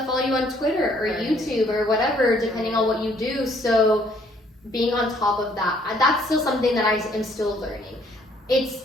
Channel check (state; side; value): normal; both; correlation 0.64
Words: follow you on Twitter or YouTube or whatever, depending on what you do. So being on top of that's still something that I am still learning.